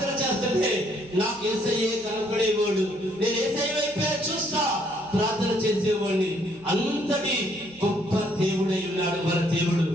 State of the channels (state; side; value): noise; right; hum, 26 dB below the sound